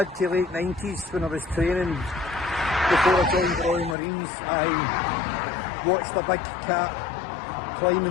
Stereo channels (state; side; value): drops out; right; at 4.0 s